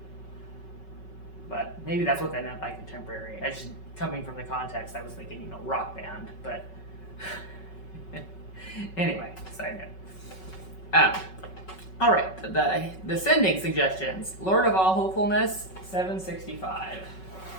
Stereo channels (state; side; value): late; right; 5.3 ms